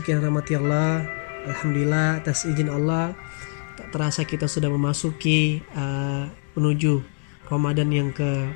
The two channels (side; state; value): right; silent; digital silence